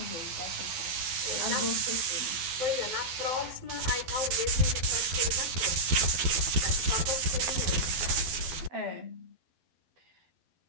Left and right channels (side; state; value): left; late; 12 ms